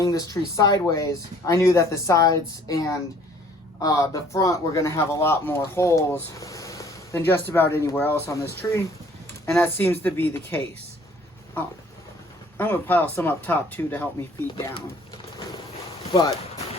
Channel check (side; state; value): both; normal; correlation 0.57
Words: this tree sideways, I knew that the sides and the front were going to have a lot more holes than just about anywhere else on this tree, and that seems to be the case. I'm going to pile some up top too to help me feed down. But,